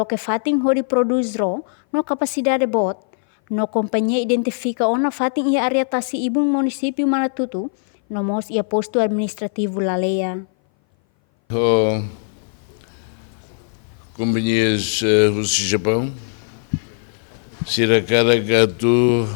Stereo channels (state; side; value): silent; right; 59 dB below the other